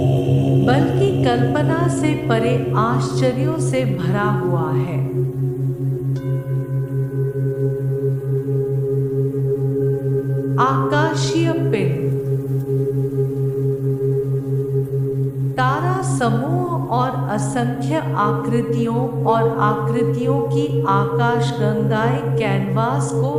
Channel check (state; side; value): identical; both; correlation 1.00